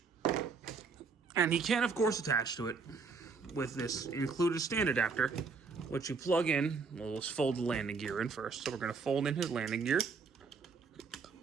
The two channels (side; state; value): left; quieter; 4.9 dB